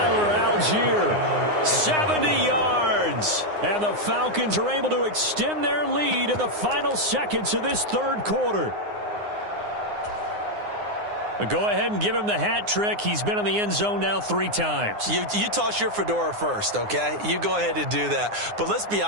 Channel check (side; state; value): left; late; 9.7 ms